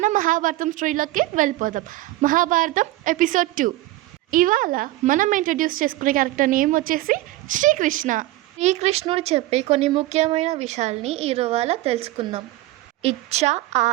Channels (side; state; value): left; quieter; 17.4 dB